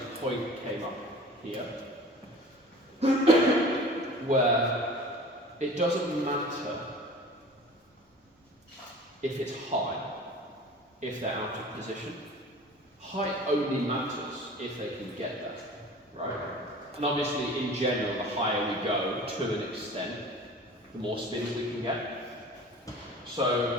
point came up here, where it doesn't matter if it's high, if they're out of position. Height only matters if they can get there, right? And obviously, in general, the higher we go, to an extent, the more spins we can get. So,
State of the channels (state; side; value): normal; both; correlation 0.42